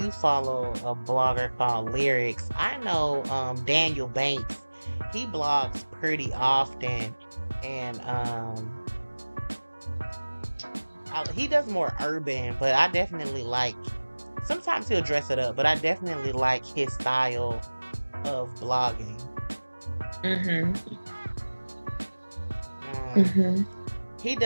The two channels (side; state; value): both; inverted; correlation -1.00